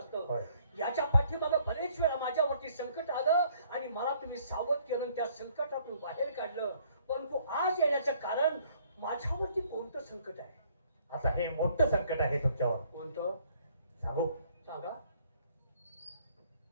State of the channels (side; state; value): both; inverted; correlation -0.62